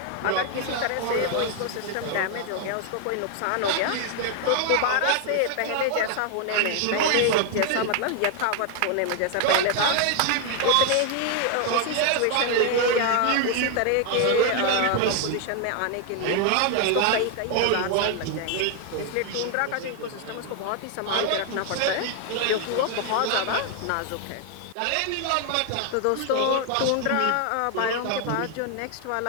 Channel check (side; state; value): both; different; correlation 0.00